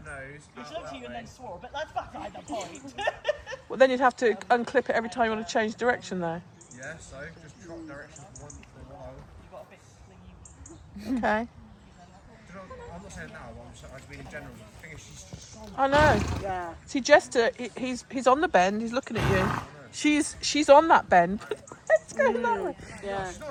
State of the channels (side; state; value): both; identical; correlation 1.00